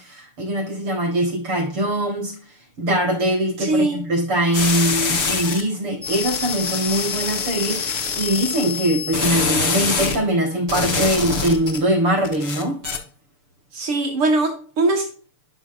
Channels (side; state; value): left; late; 6.8 ms